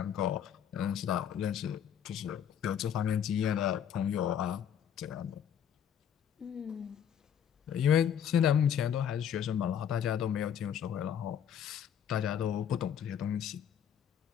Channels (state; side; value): quieter; right; 8.9 dB